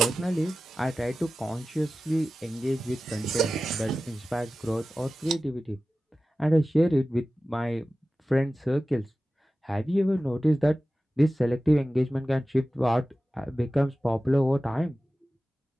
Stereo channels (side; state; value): both; normal; correlation 0.95